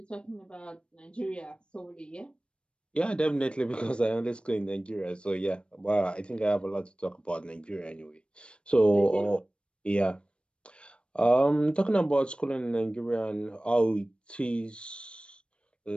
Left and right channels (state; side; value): late; right; 0.056 ms